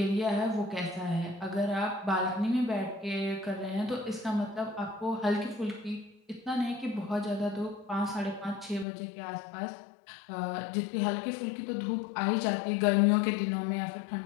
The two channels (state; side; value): drops out; right; at 8.8 s